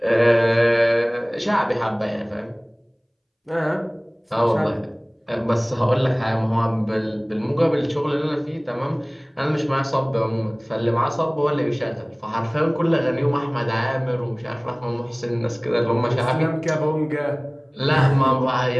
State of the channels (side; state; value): both; identical; correlation 1.00